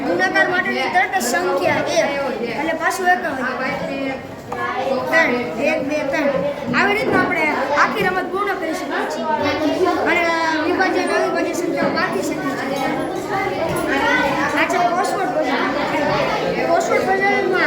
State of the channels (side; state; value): both; identical; correlation 1.00